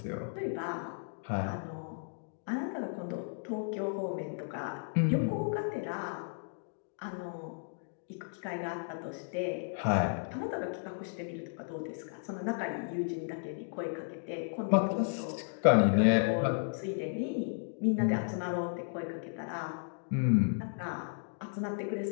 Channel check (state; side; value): silent; right; digital silence